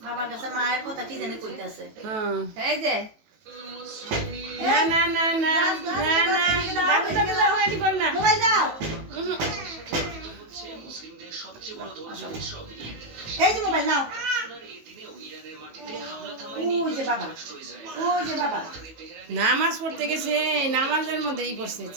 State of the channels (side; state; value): left; late; 19 ms